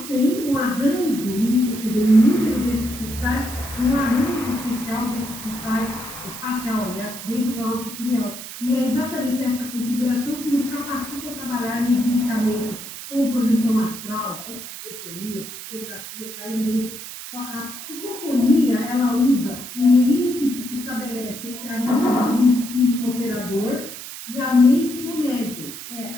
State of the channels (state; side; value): noise; right; hiss, 11 dB below the sound